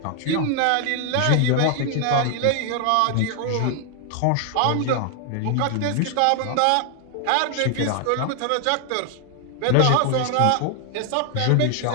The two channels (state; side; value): different; both; correlation 0.00